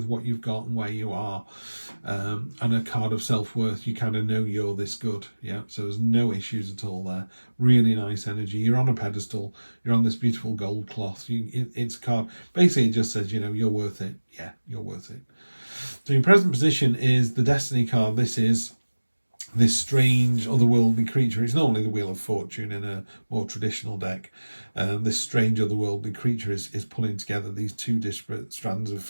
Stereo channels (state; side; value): inverted; both; correlation -1.00